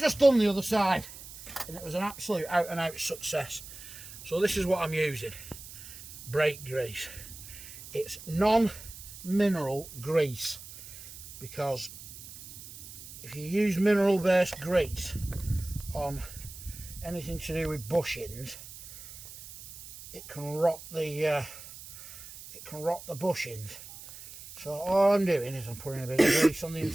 done the other side and it was an absolute out and out success. So this is what I'm using. Brake grease. It's non-mineral grease because if you use mineral based grease on anything to do with bushings, it can rot the bushings. So all I'm doing is I'm putting a bit of grease on the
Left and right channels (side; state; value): right; noise; hiss, 15 dB below the sound